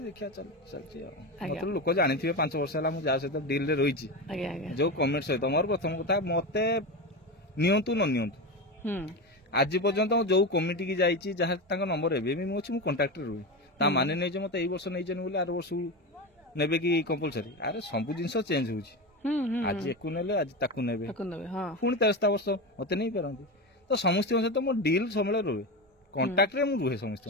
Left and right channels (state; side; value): normal; both; correlation 0.19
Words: देखिया चलछि मतलब लोक जानी थे 5 वर्ष है जा सहित डील रे रही जो कमेंट सहित मोर प्रथम कथा मते नियंतु न नियंतु आज पर्यंत जो कमिटी की जाइए जहाँ नंबर एवं मुझे मुझे कंटाक्ट रुए ता माने नहीं मत यही वर्ष नहीं बोले आर वर्ष ने कि कंपलसरी अरे सब जिन चेंज हो आज एक आज ताकू ने पुणी 13 वर्ष मत नहीं पारती तो समस्त सहित मो डील समय रुए कंटाक्ट रुए समस्त